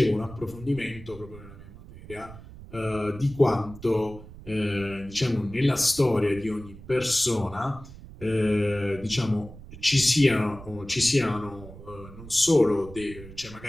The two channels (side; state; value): right; noise; rumble, 16 dB below the sound